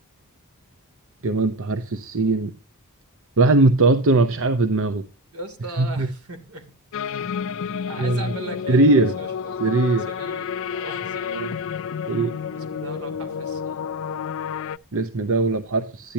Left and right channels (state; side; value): normal; both; correlation 0.19